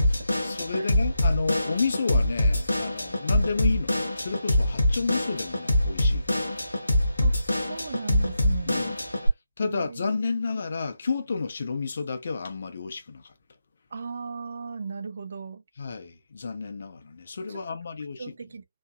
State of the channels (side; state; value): both; inverted; correlation -0.86